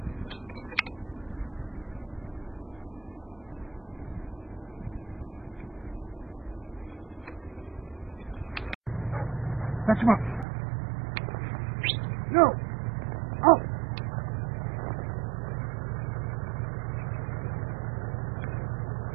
Touch him up. No. Oh.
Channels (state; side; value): drops out; left; at 10.5 s